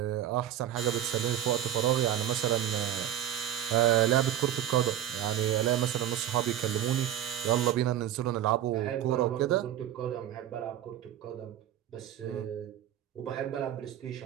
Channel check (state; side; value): quieter; left; 11.4 dB